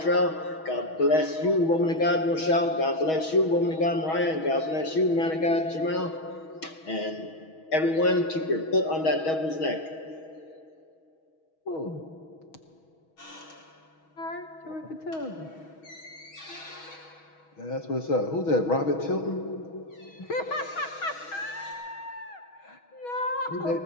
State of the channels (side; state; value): right; late; 6.3 ms